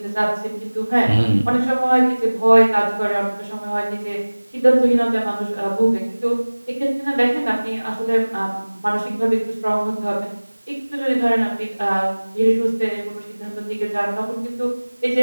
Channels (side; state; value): both; inverted; correlation -1.00